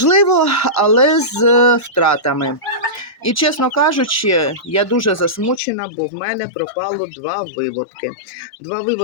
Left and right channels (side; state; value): right; drops out; at 5.6 s